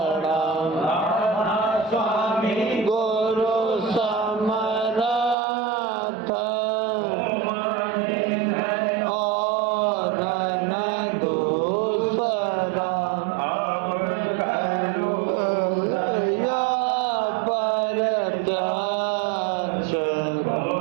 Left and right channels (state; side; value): drops out; left; at 5.4 s